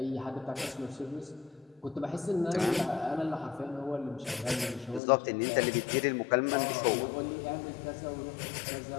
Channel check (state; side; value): drops out; right; at 5.0 s